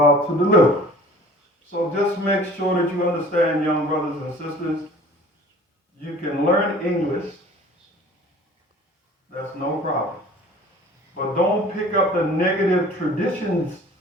to deliver. So just make sure that you understand, young brothers and sisters, you can learn English. That's no problem. But don't pick up the negative traditions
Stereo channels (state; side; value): normal; both; correlation 0.47